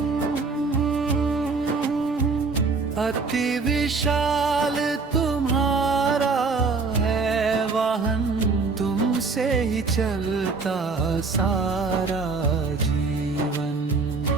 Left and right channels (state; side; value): quieter; left; 4.3 dB